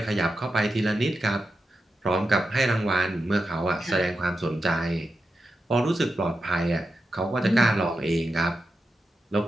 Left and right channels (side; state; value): both; normal; correlation 0.89